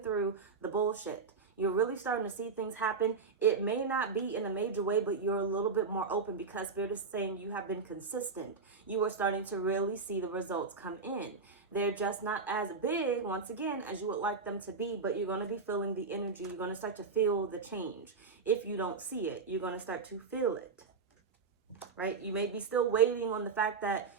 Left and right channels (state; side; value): quieter; left; 4.9 dB